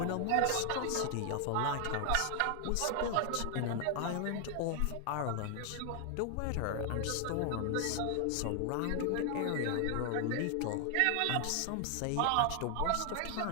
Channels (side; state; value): both; different; correlation 0.00